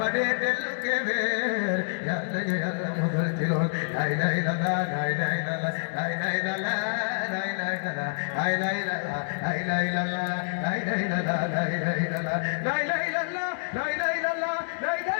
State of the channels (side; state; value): right; silent; digital silence